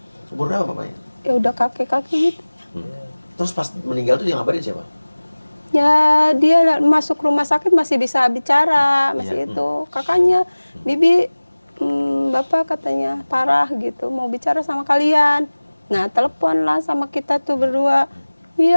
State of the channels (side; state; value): both; inverted; correlation -1.00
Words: Umur berapa bapaknya? Ya udah kakek-kakek gitu. Terus pas meninggal tuh dia ngabarin siapa? Ya dia masuk rumah sakit masih bisa bicara, masih Iya. itu kakaknya, Bibi, bapak katanya parah gitu, mau bicara sama kalian. Nah telepon lah sama kita tuh berdua.